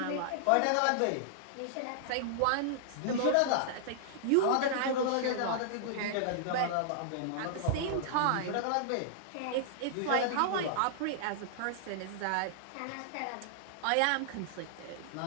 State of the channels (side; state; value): both; different; correlation -0.01